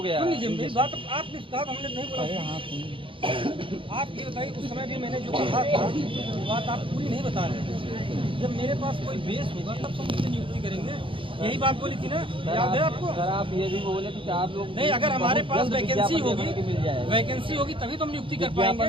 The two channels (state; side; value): late; left; 0.25 ms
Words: गया। सुन लीजिए मेरी बात, आपने कहा हमने नहीं बोला। आप ये बताइए, उस समय भी मैंने जो कहा था वो बात आप पूरी नहीं बता रहे थे। जब मेरे पास कोई बेस होगा तब हम उससे नियुक्ति करेंगे, यही बात बोली थी ना, याद है आपको? सर आप ये भी बोले कि आप लोग नहीं, अगर हमारे पास वैकेंसी होगी, मिल जाएगा, वैकेंसी होगी तभी तो हम नियुक्ति कर पाएंगे।